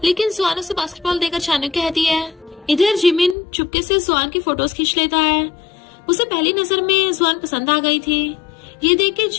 लेकिन जुआन उसे बास्केटबॉल देकर जाने को कहती है। इधर जिमिन चुपके से जुआन की फोटोज खींच लेता है। उसे पहली नजर में जुआन पसंद आ गई थी। ये देख के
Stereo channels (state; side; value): drops out; right; at 3.4 s